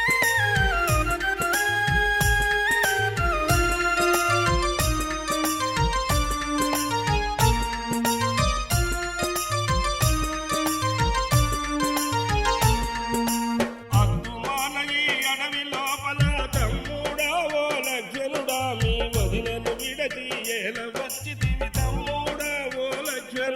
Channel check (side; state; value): both; identical; correlation 1.00